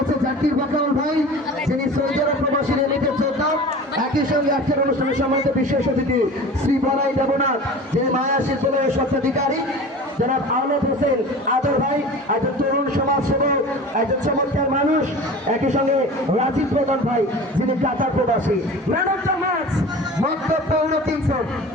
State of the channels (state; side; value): normal; both; correlation 0.37